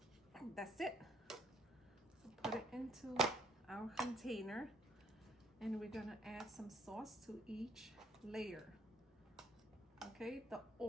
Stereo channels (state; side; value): normal; both; correlation 0.65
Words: that's it. So put it into our container and we're gonna add some sauce to each layer. Okay, the